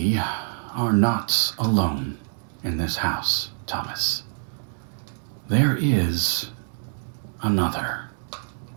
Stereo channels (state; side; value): silent; left; digital silence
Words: are not alone in this house, Thomas. There is another,